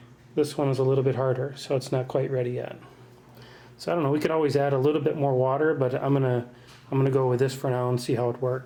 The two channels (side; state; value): both; identical; correlation 1.00